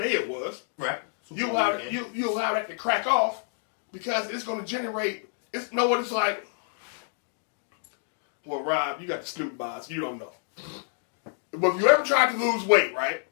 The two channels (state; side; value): silent; right; digital silence